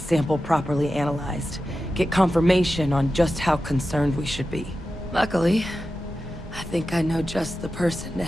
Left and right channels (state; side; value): normal; both; correlation 0.92